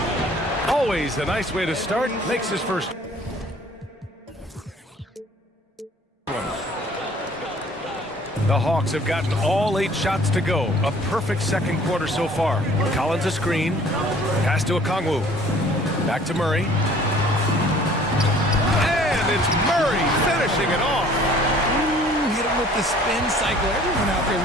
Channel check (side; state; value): both; normal; correlation 0.53